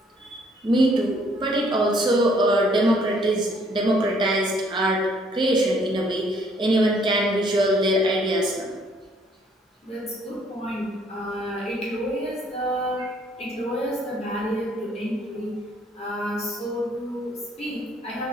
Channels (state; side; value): normal; both; correlation 0.64